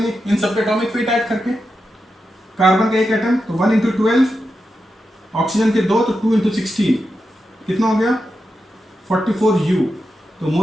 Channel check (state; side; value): normal; both; correlation 0.88